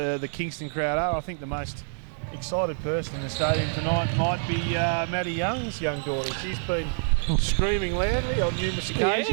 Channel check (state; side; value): silent; left; digital silence